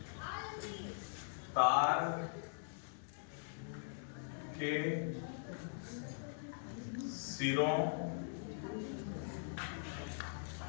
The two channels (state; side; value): silent; right; digital silence